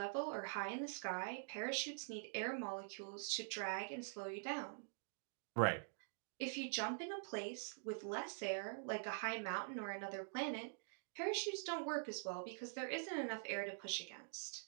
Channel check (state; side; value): silent; left; digital silence